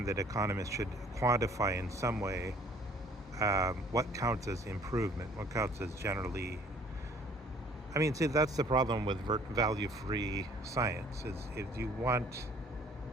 that economists should quantify in some way what counts as improvement, what counts as generally. I mean, see, that's the problem with value-free science, is if you want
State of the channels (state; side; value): normal; both; correlation 0.56